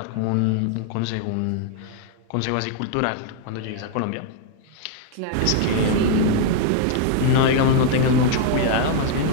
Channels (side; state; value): both; different; correlation 0.00